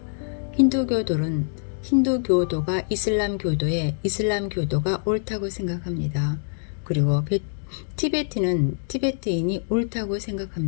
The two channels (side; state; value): right; silent; digital silence